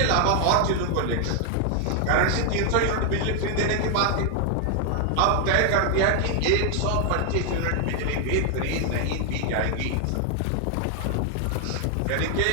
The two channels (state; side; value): different; both; correlation 0.00